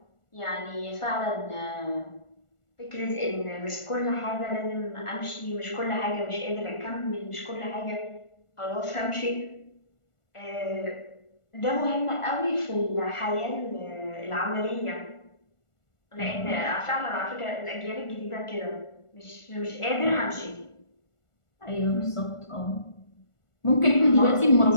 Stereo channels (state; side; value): late; right; 1.4 ms